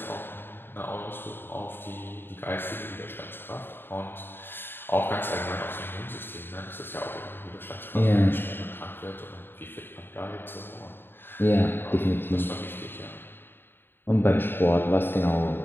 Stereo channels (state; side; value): late; right; 0.10 ms